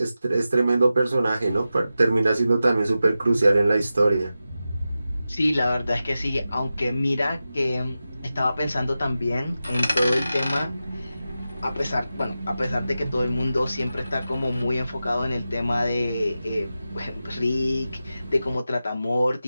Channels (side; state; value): both; inverted; correlation -0.92